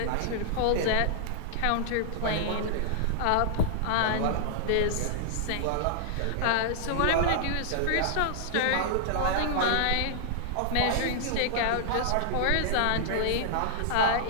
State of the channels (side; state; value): both; different; correlation -0.01